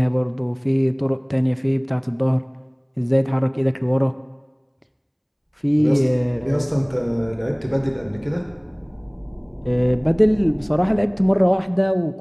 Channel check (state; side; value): identical; both; correlation 1.00